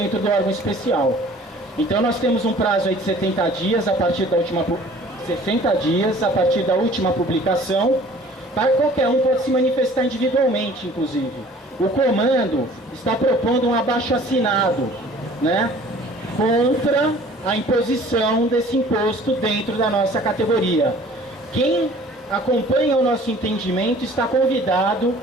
do órgão especial. Então nós temos um prazo aí de 70 dias a partir da última 60 dias a partir da última publicação, para qualquer um pode se manifestar individualmente, inclusive. O comando está propondo um abaixo-assinado, né, contra a imposição desse imposto dentro da nossa categoria. Quem acompanha o nosso entendimento está convidado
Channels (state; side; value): normal; both; correlation 0.50